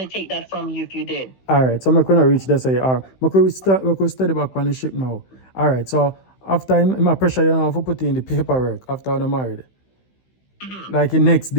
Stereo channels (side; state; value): right; late; 16 ms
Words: take that from you if you did? All right, so I'm going to reach this. We could study back on the ship now. All right, so after my pressure, for putting in the paperwork after I'm married. Like the next